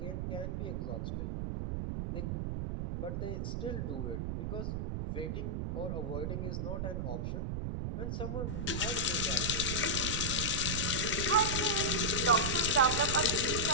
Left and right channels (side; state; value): right; noise; rumble, 2 dB below the sound